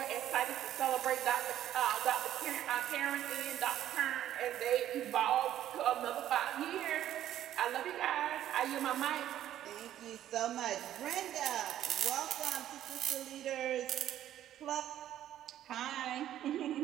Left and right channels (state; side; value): quieter; left; 11.9 dB